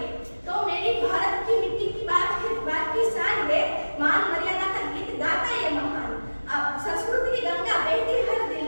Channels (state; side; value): inverted; both; correlation -1.00